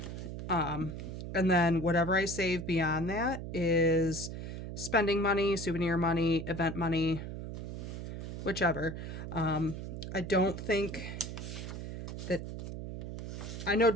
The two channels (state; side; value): noise; right; hum, 7 dB below the sound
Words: And then whatever I save beyond that is spending money, souvenir money, event money, whichever. I don't think that, I know